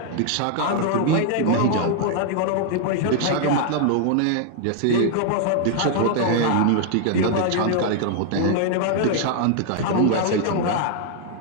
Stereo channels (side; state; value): both; different; correlation 0.00